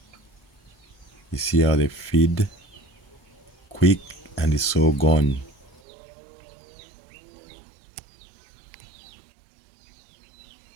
You see how they feed quick and it's all gone.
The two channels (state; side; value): drops out; left; at 5.8 s